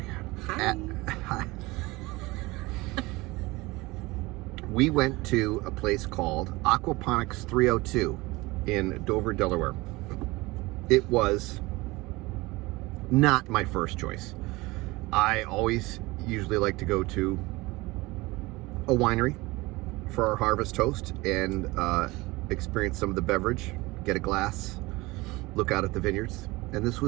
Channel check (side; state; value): left; quieter; 21.9 dB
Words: God. Hi. We went to a place called Aquaponics 302 in Dover, Delaware. It was not my first choice. I always usually like to go to a winery for our Harvest Toast and experience some of the beverage, get a glass, look out at the vineyards. And this